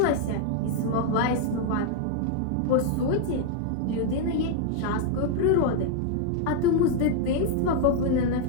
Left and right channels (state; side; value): different; both; correlation 0.00